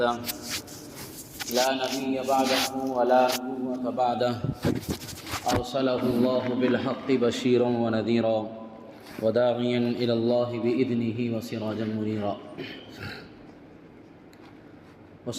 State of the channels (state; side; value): identical; both; correlation 1.00